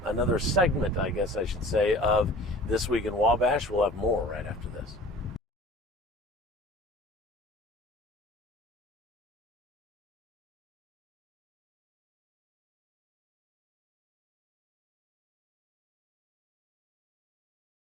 another segment, I guess I should say, of This Week in Wabash. We'll have more right after this.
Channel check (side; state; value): both; normal; correlation 0.43